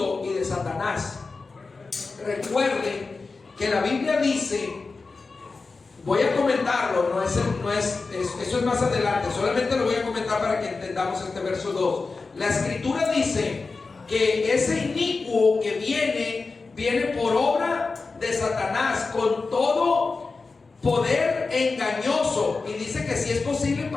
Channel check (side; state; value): right; quieter; 4.1 dB